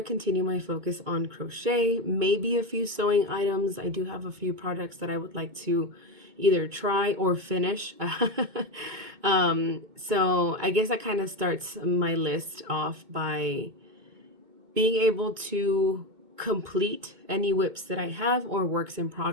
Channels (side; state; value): left; late; 2.2 ms